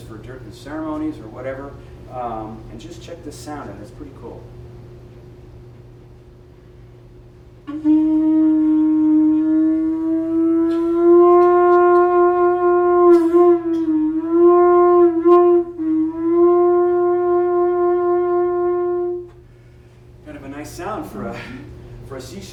for certain ceremonies or whatever. And just check this sound out, it's pretty cool. Kind of a nice sound for a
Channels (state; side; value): identical; both; correlation 1.00